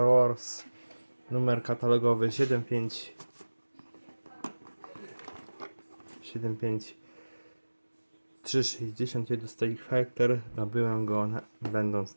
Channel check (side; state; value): both; inverted; correlation -1.00